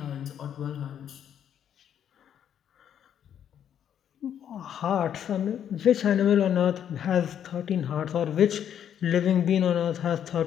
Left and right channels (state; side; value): quieter; right; 9.4 dB